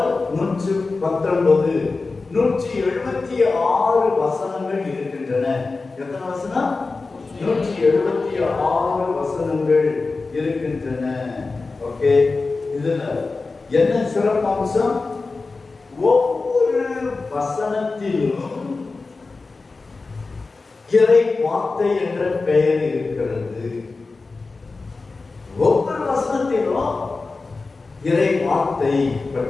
119. 176 வசனங்கள் இருக்கின்றன. எத்தனை வசனம்? 176 வசனங்கள் இருக்கின்றன. ஓகே, இதுல என்ன சிறப்பம்சம்? ஒவ்வொரு வசனத்திலும் இறை வார்த்தை என்ற பெயர் இருக்கிறது. ஒவ்வொரு வசனத்திலும் இறை வார்த்தை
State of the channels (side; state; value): right; quieter; 3.9 dB